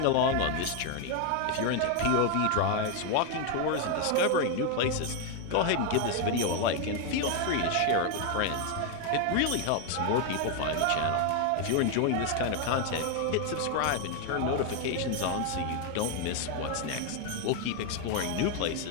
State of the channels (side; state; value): both; different; correlation 0.01